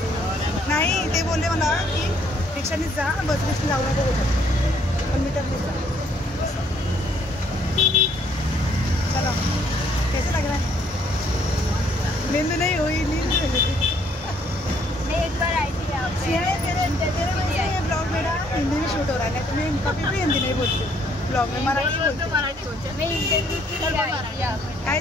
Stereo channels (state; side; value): normal; both; correlation 0.66